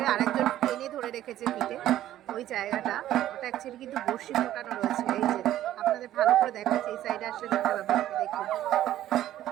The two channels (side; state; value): left; quieter; 13.0 dB